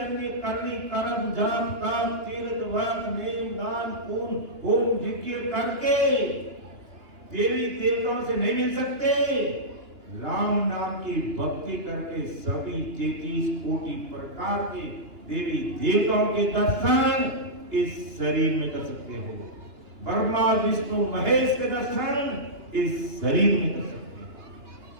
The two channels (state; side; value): late; left; 2.9 ms